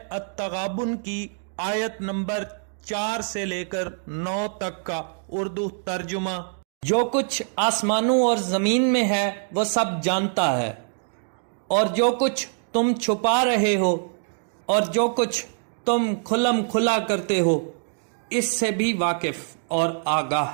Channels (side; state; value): left; silent; digital silence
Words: التغابن کی آیت نمبر 4 سے لے کر 9 تک کا اردو ترجمہ۔ جو کچھ آسمانوں اور زمین میں ہے وہ سب جانتا ہے، اور جو کچھ تم چھپا رہے ہو اور جو کچھ تم کھلم کھلا کرتے ہو اس سے بھی واقف اور